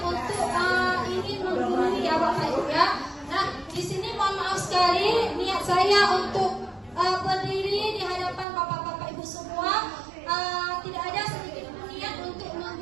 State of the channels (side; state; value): left; drops out; at 8.5 s